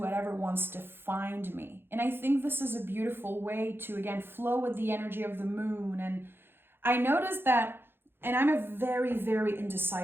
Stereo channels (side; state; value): left; late; 0.10 ms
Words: wants to find me. And I think this is a beautiful way to, again, flow with the energy of the moon. And I noticed that, and I'm a very, very